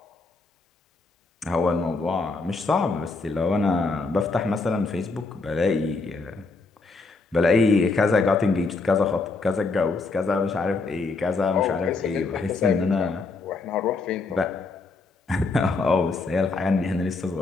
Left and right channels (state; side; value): quieter; right; 3.8 dB